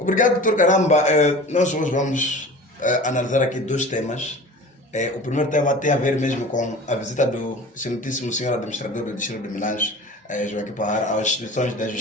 Dr. Caramba. Nós hoje vamos analisar aqui dois temas. O primeiro tema tem a ver mesmo com a visita do excelentíssimo senhor administrador do Distrito de Milange, Joaquim Parra, às instituições da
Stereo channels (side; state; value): both; normal; correlation 0.39